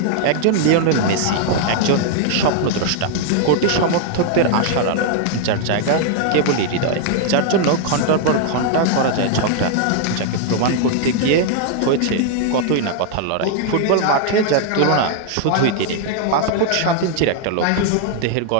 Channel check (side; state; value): both; different; correlation 0.00